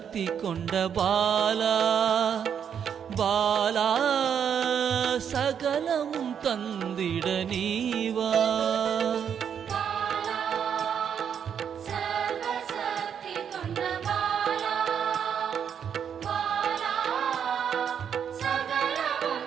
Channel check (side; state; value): left; quieter; 8.0 dB